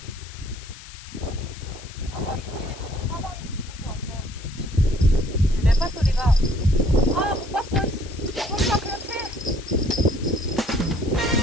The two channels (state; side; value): noise; left; hiss, 17 dB below the sound